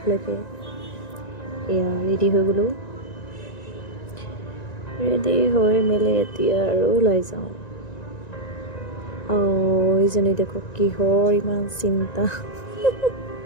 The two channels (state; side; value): late; right; 1.9 ms